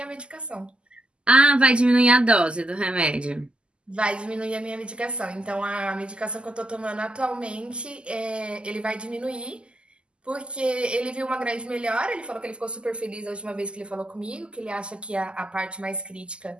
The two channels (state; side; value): late; left; 0.051 ms